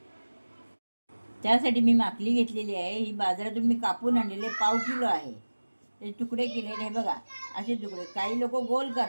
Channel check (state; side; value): inverted; both; correlation -1.00